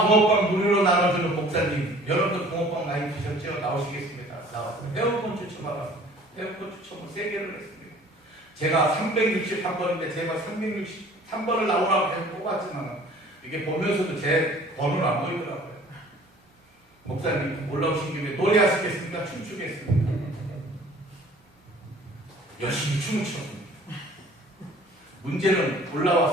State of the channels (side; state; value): both; normal; correlation 0.51